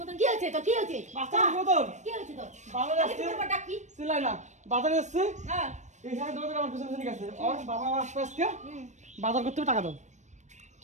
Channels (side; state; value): left; late; 0.34 ms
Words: মতন কি হয়েছে? তো কি হয়েছে? বাচ্চা মতন কি হয়েছে তোর? বাজারে আগে আসছে, তোমার ডাক কি? চিল্লাই না। বাজারে আসছে, হ্যাঁ, এই সাথে দৌড়ে আমার পিছনে পিছনে গেছে। ওর বাবা আসবে আজকে, বাজার করতে হবে, টাকা দাও।